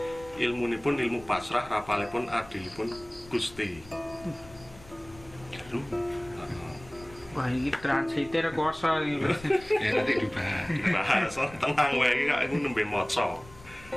ilmunipun ilmu pasrah, rapalipun adilipun Gusti. Wah, ini translator kuasa ini. ya nanti dibahas. Bahasa tenang wae iki kak nembe maca.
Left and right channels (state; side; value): noise; left; rumble, 21 dB below the sound